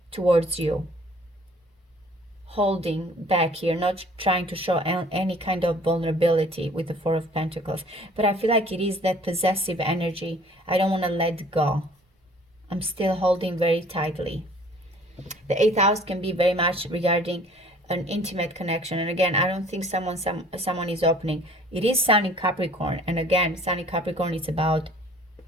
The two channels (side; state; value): both; normal; correlation 0.53